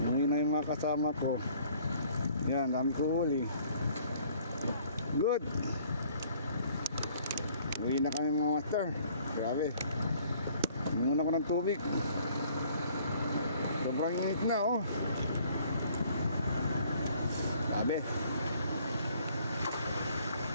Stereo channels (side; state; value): both; inverted; correlation -0.59